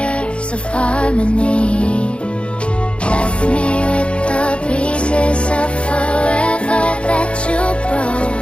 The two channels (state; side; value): late; right; 0.058 ms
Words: of harmony. Left me with the pieces of forever that you